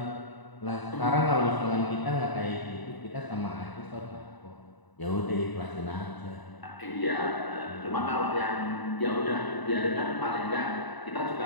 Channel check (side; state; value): right; late; 1.0 ms